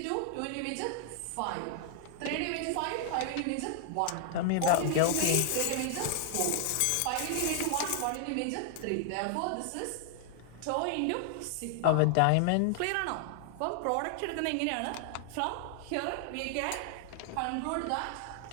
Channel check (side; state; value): both; different; correlation 0.00